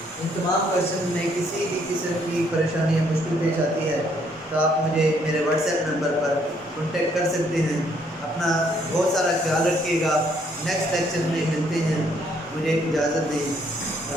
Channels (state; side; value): normal; both; correlation 0.68